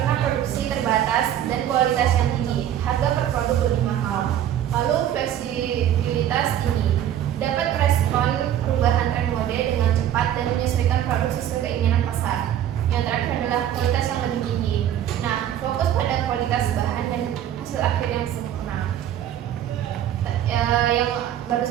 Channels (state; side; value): quieter; left; 11.0 dB